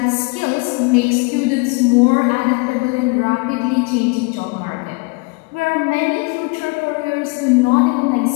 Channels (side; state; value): right; quieter; 28.4 dB